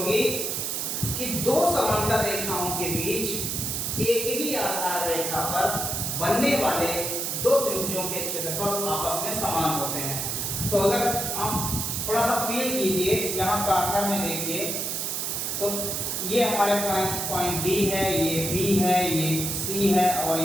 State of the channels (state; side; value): noise; right; hiss, 1 dB below the sound